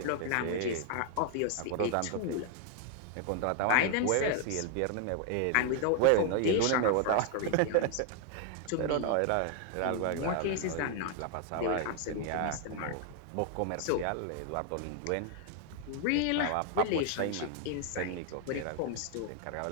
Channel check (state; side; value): different; both; correlation 0.00